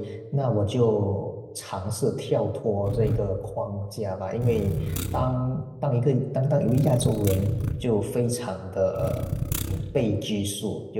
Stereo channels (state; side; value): identical; both; correlation 1.00